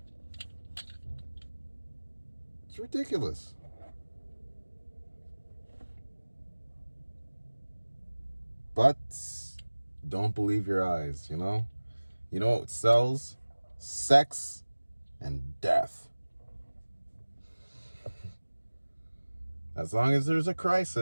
It's ridiculous. But don't believe your eyes, you know? You know what sells? Sex and death. As long as there's a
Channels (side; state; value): both; inverted; correlation -1.00